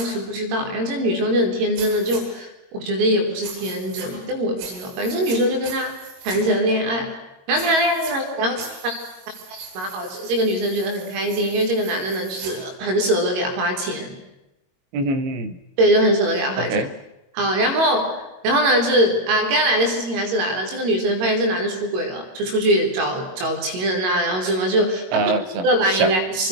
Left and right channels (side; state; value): left; late; 22 ms